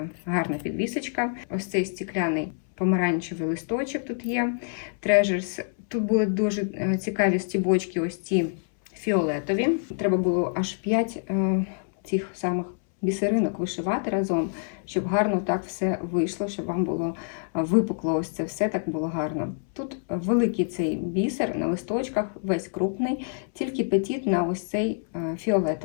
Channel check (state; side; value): silent; right; 61 dB below the other